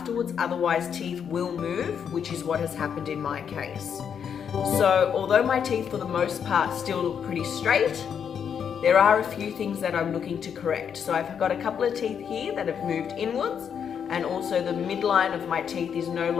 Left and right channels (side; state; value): right; quieter; 7.7 dB